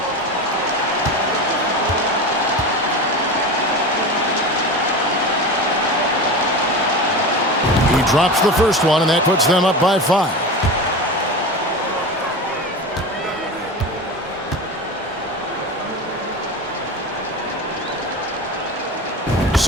He drops the first one, and that puts them up by 5.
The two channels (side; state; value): both; normal; correlation 0.28